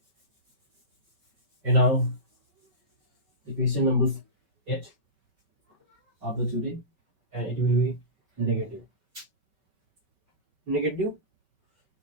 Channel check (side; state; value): left; late; 5.2 ms